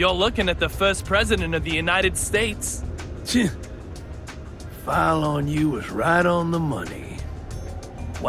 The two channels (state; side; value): identical; both; correlation 1.00